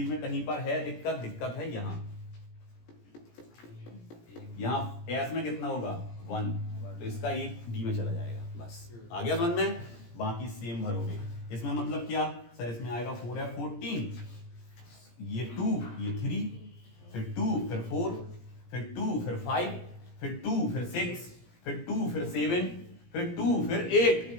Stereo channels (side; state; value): right; late; 17 ms